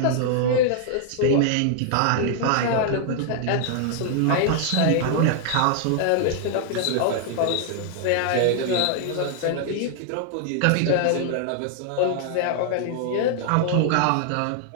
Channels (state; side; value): different; both; correlation 0.00